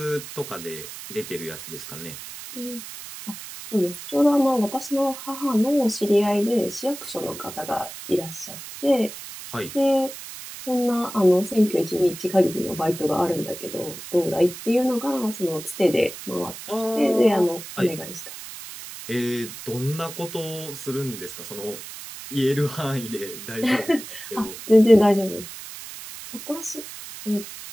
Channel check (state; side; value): noise; right; hiss, 12 dB below the sound